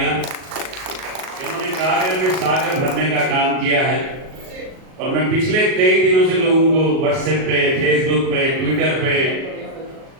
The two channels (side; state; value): left; late; 38 ms